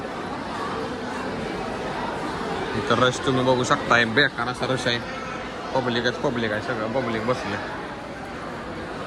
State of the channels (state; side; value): identical; both; correlation 1.00